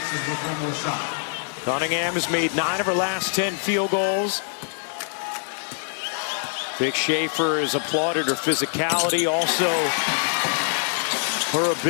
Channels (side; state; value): right; silent; 62 dB below the other